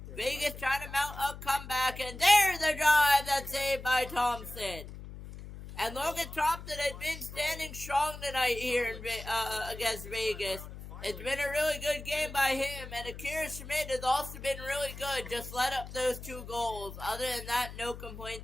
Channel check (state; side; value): noise; left; hum, 12 dB below the sound